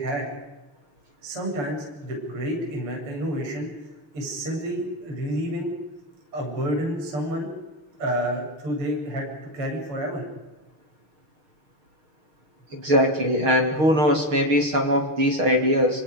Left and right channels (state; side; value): late; left; 6.5 ms